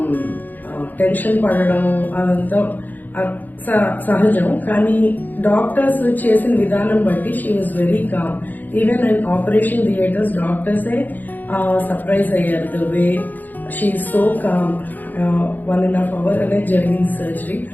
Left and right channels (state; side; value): late; right; 0.085 ms